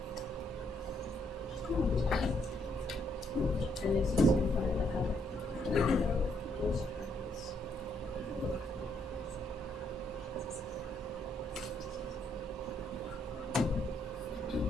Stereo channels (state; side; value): normal; both; correlation 0.72